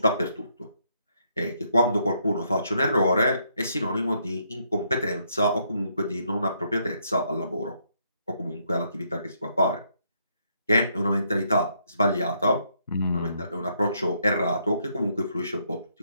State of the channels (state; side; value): inverted; both; correlation -0.73